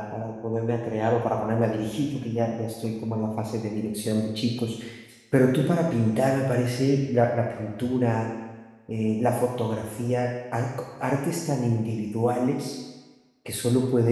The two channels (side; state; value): both; identical; correlation 1.00